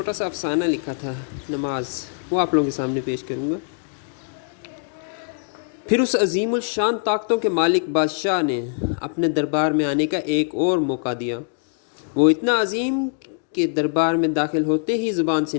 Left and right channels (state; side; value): silent; right; 64 dB below the other